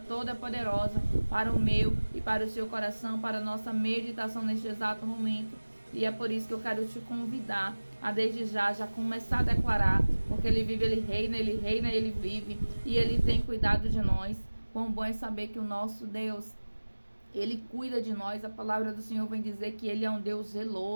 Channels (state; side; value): inverted; both; correlation -1.00